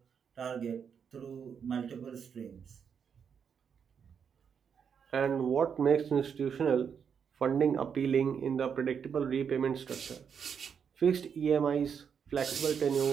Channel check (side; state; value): left; quieter; 7.1 dB